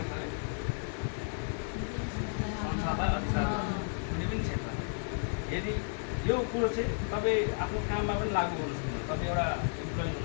अरे? संसारलाई अधिकार कुनै पनि क्षेत्र। यदि यो कुरो चाहिँ तपाईँ आफ्नो काममा पनि लागू गर्नु सक्नुहुन्छ। तपाईँ एउटा इम्प्लोइ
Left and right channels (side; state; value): right; silent; digital silence